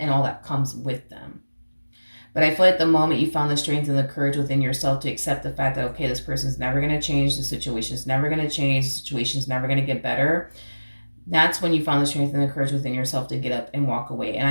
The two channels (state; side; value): inverted; both; correlation -1.00